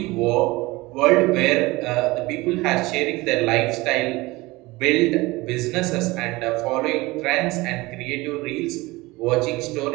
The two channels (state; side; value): quieter; left; 21.4 dB